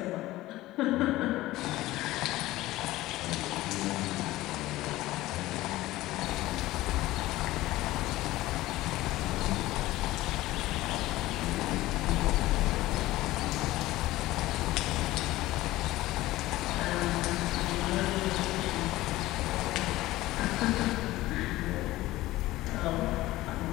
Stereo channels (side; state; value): right; quieter; 17.2 dB